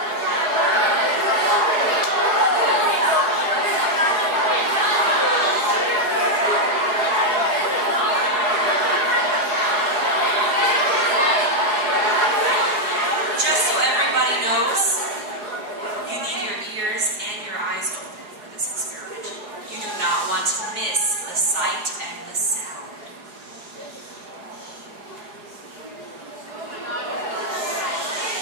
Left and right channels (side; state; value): left; late; 4.8 ms